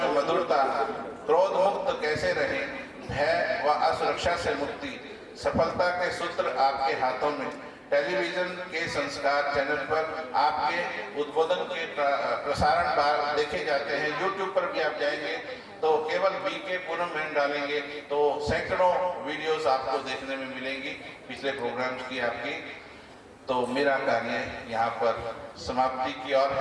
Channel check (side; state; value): both; identical; correlation 1.00